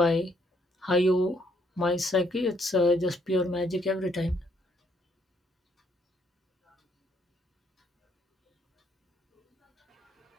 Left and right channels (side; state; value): both; normal; correlation 0.69